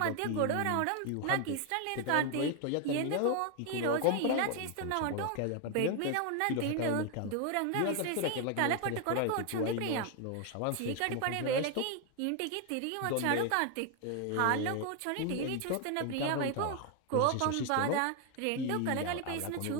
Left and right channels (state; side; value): different; both; correlation 0.01